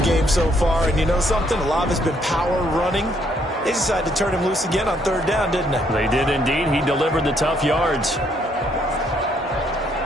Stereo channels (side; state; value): both; normal; correlation 0.70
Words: game so far, and you know something? A lot of it's been power running. They decided to turn him loose again on 3rd down, didn't they? They did indeed. He delivered the tough yards.